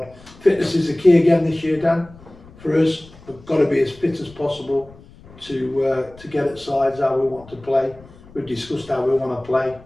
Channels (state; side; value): noise; left; rumble, 23 dB below the sound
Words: Fitness is the key again this year, Dan. For us, we've got to be as fit as possible to get at sides how we want to play. We've discussed how we want to play.